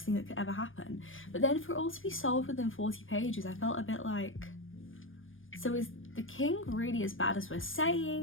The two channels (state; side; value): late; right; 0.58 ms